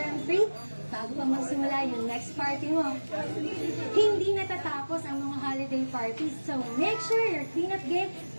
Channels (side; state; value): both; inverted; correlation -1.00